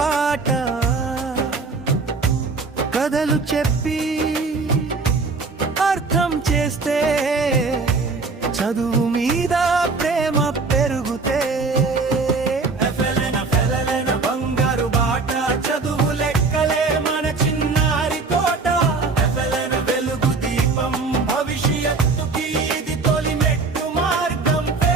కథలు చెప్పి అర్థం చేస్తే చదువు మీద ప్రేమ పెరుగుతే బంగారు బాట చదువు లెక్కలే మన చిన్నారి తోట వెలుగు దీపం భవిష్యత్తుకి ఇది తొలి మెట్టు మార్గం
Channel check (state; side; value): quieter; left; 4.2 dB